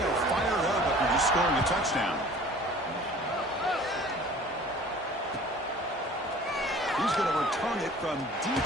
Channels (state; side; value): normal; both; correlation 0.48